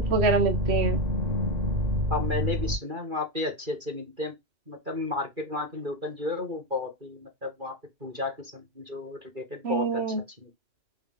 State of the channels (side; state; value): left; late; 2.4 ms